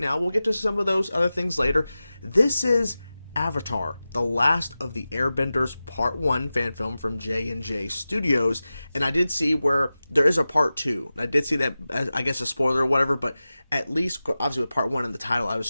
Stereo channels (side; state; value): both; inverted; correlation -0.95